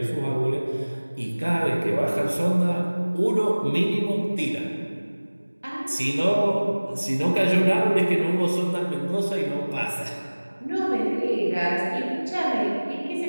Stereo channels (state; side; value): inverted; both; correlation -1.00